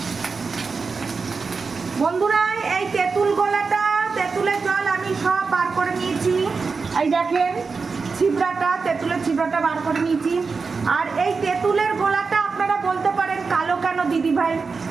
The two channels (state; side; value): quieter; left; 4.7 dB